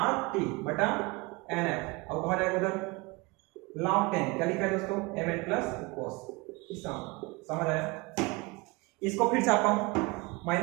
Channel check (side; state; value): left; quieter; 25.3 dB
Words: बटा NF, अब कहा जाएगा उधर log 10, क्या लिखा है दोस्तों Mn प्लस cos, समझ आया। इसको फिर छापा हूं,